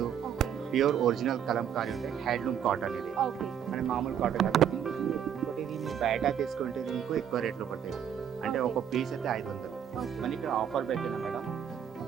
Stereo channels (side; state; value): left; quieter; 8.8 dB